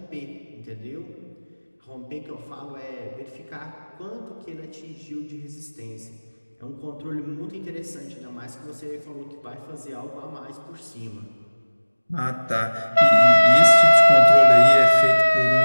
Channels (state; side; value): inverted; both; correlation -1.00